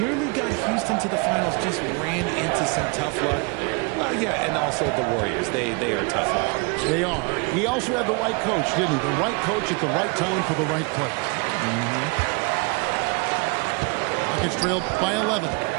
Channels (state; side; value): quieter; left; 31.3 dB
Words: got Houston to the finals, just ran into some tough luck. Well, yeah, and also the Warriors. They are tough luck. They are. He also had the right coach, didn't he? The right coach at the right time for the right play. Rockets trailed by 11.